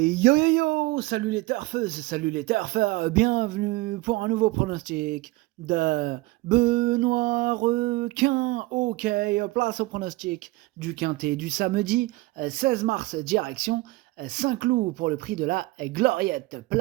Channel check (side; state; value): left; quieter; 20.7 dB